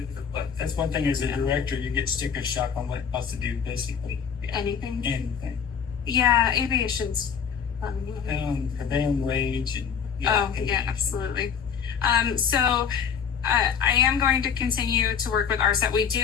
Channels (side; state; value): right; quieter; 7.1 dB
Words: one thing as a director, you get sticker shock on what else to do basically. Anything. Anything. Yeah, aviation's fun. Prevailing wage and Absolutely. So I am going to continue to work with RSET. We